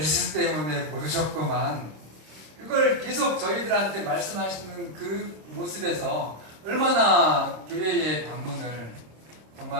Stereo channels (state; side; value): late; left; 26 ms